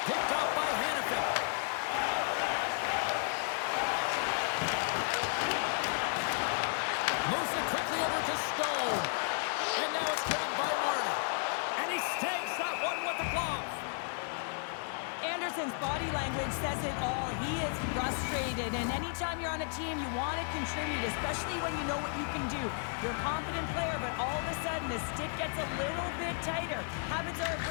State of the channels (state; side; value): silent; right; 55 dB below the other